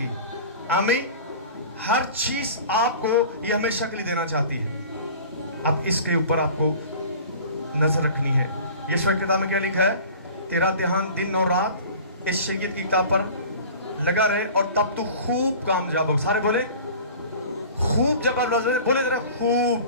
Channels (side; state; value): both; inverted; correlation -0.41